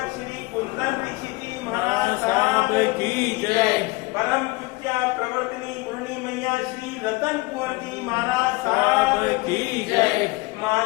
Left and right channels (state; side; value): quieter; right; 23.3 dB